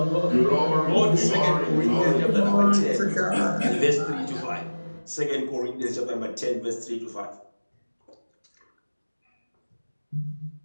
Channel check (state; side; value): inverted; both; correlation -1.00